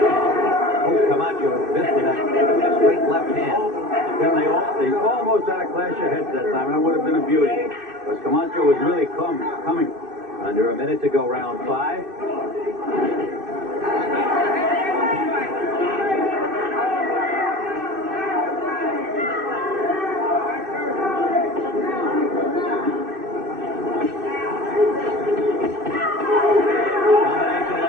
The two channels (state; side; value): late; left; 2.6 ms